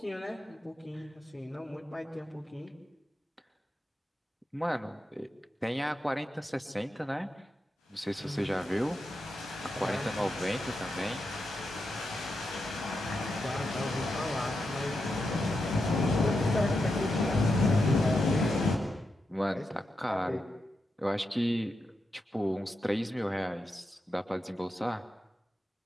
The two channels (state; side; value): normal; both; correlation 0.87